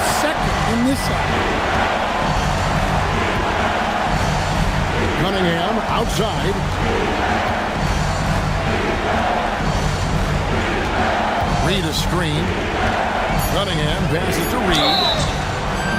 second in this half. Cunningham outside. Reed a screen. Cunningham passes to Reed.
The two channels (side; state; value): both; identical; correlation 1.00